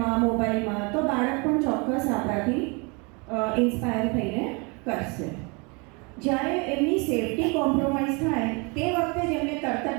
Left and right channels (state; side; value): quieter; left; 30.8 dB